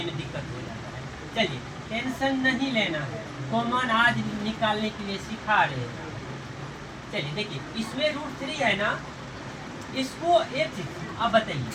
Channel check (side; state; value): both; identical; correlation 1.00